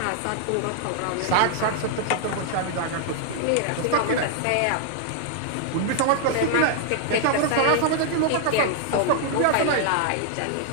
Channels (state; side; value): different; both; correlation -0.01